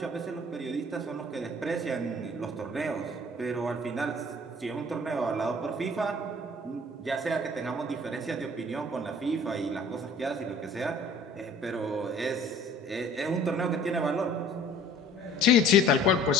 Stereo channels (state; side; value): normal; both; correlation 0.51